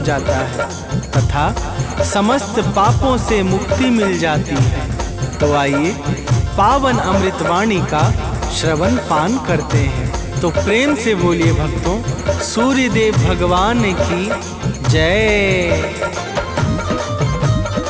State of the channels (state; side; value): identical; both; correlation 1.00